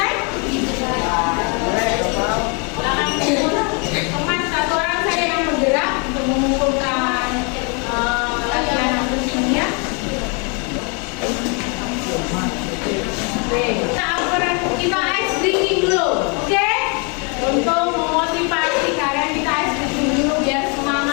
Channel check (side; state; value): right; quieter; 34.6 dB